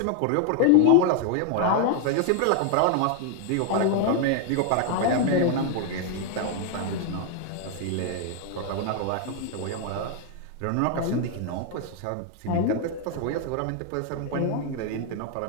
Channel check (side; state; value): both; different; correlation 0.00